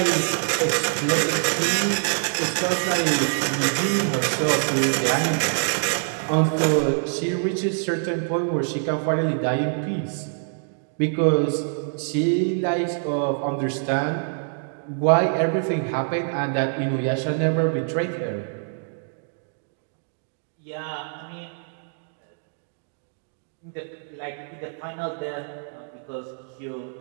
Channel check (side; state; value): left; silent; digital silence